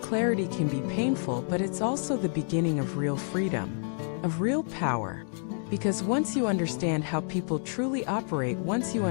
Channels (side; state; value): right; silent; 59 dB below the other